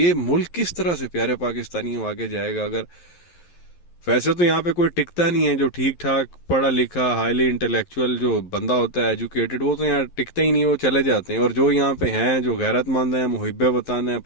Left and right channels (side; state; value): right; late; 11 ms